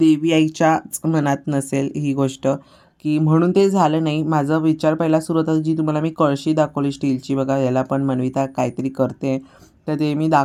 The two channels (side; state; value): both; identical; correlation 1.00